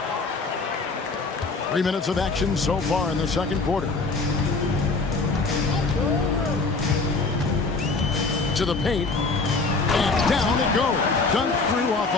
3 minutes of action so far in the second quarter. To the paint. And down it goes. Dunked through off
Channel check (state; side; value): quieter; right; 3.9 dB